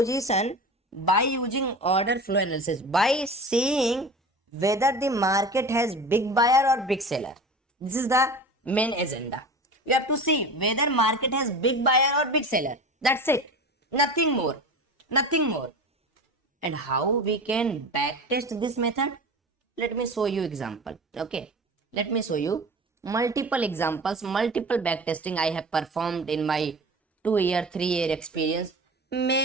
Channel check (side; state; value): both; normal; correlation 0.34